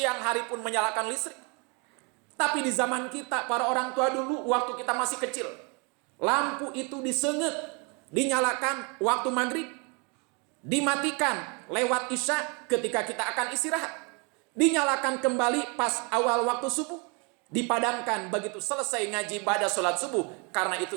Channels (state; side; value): quieter; left; 32.9 dB